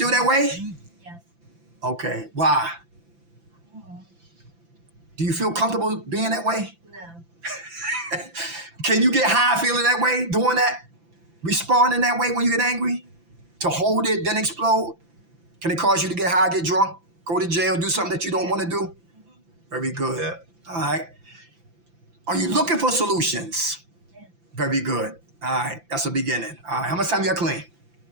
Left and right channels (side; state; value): left; late; 5.9 ms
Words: that way? Yes. Okay. Why? Do you feel comfortable being that way? No. Can you get high feeling that way, doing that? Responding that way when you get angry? To hold it, then explode? Can it cause you to get high, get drunk, go to jail, do something that you don't want to do? Very good. Yeah. All right. Are you looking for solutions? Yeah. Very good. All right. That's a beginning. All right. How much time you got clean?